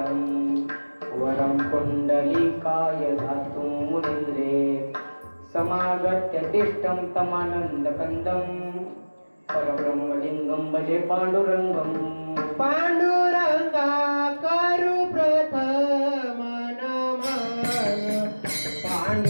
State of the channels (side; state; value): both; inverted; correlation -1.00